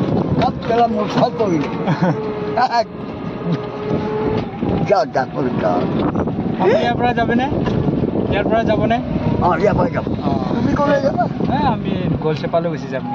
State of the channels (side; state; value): both; identical; correlation 1.00